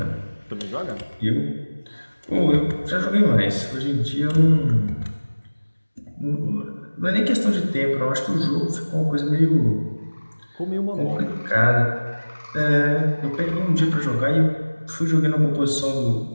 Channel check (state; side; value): inverted; both; correlation -1.00